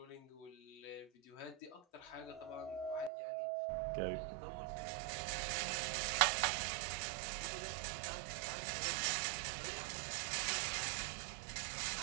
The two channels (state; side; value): drops out; left; at 3.1 s